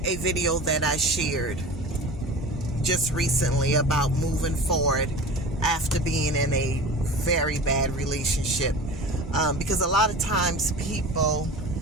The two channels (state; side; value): normal; both; correlation 0.35